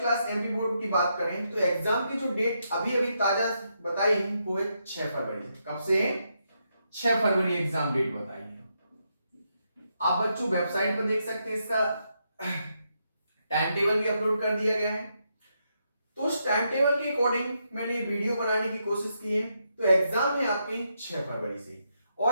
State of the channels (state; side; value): inverted; both; correlation -0.81